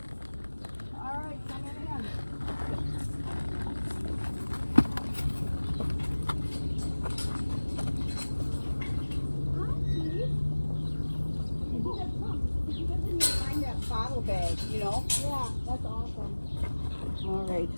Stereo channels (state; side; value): inverted; both; correlation -1.00